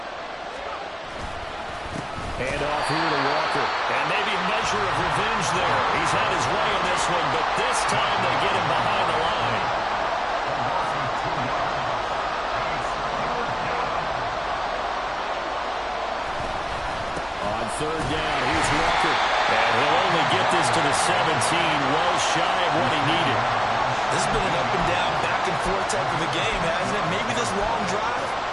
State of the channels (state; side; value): identical; both; correlation 1.00